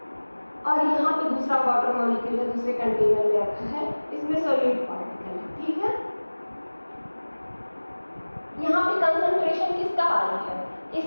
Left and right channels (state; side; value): inverted; both; correlation -1.00